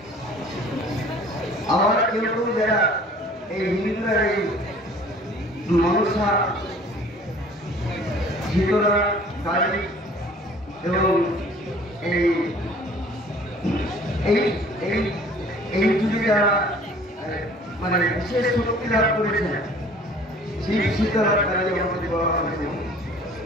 আবার কেউ কেউ যারা এই হিন্দুরা এই মনসা, শীতলা, কালী এবং এই এই এই এই যুগে যারা মানে বিশেষ শক্তি লাভ করেছে, শিব শীতলা কালী আমাদের বলা হয়েছে,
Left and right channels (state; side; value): normal; both; correlation 0.51